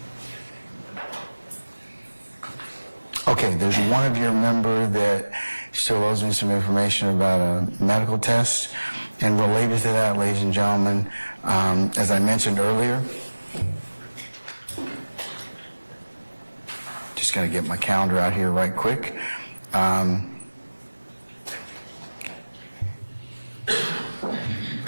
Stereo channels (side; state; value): both; inverted; correlation -1.00